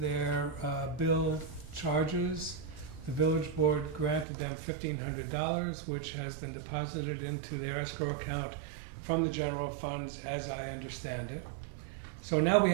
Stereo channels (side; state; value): left; drops out; at 4.2 s